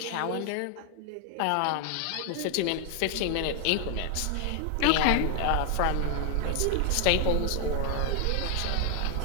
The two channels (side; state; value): both; different; correlation 0.00